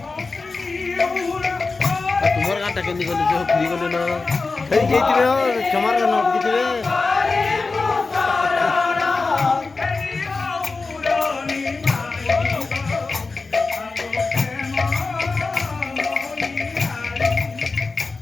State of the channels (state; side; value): quieter; right; 4.0 dB